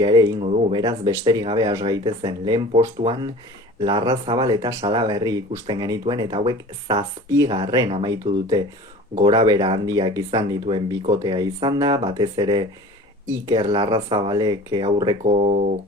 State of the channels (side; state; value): both; normal; correlation 0.42